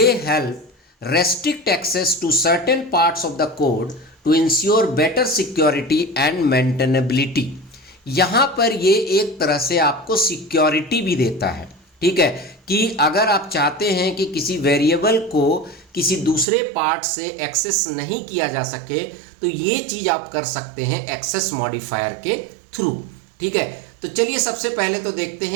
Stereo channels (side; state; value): left; drops out; at 16.4 s